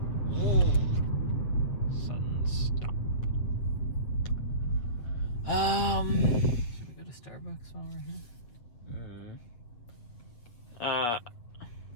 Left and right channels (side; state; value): right; late; 7.8 ms